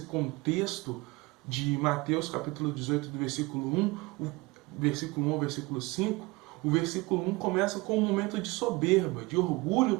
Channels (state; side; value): quieter; left; 23.3 dB